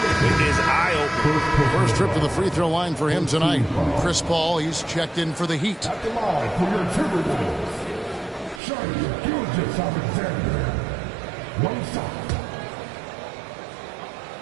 eye-opening. First trip to the free throw line for him tonight. Chris Paul, he's checked in for the Heat. At the line for your Timberwolves, Shai Gilgeous-Alexander. One shot.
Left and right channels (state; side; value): drops out; left; at 8.6 s